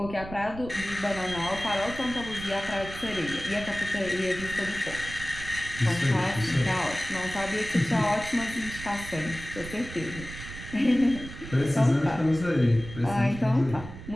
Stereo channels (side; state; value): right; noise; rumble, 12 dB below the sound